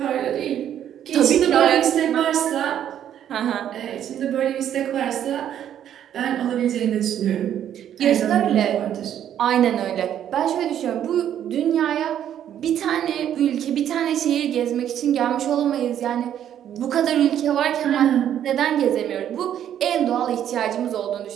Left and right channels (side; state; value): left; quieter; 10.3 dB